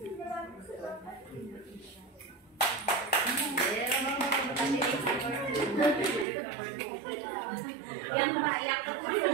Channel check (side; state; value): left; drops out; at 6.2 s